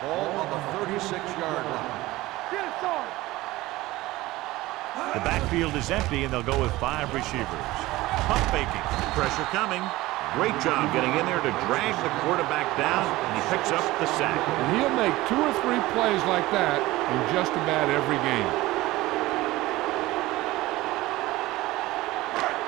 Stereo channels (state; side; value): quieter; left; 18.4 dB